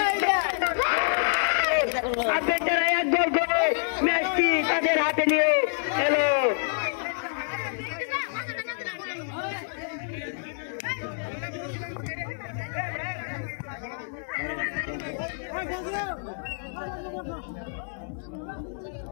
আবেদরা এক গোল করে ম্যাচটি তাদের হাতে নিয়ে এলো।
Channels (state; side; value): silent; right; digital silence